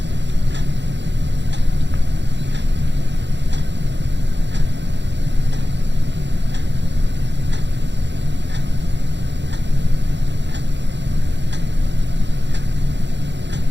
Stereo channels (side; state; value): left; late; 0.52 ms